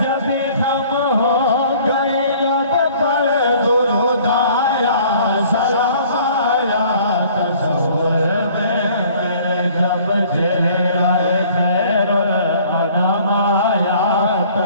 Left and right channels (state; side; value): inverted; both; correlation -0.54